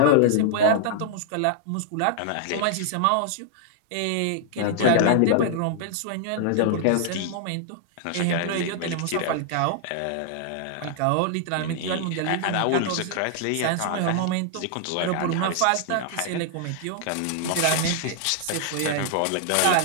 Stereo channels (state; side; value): different; both; correlation 0.00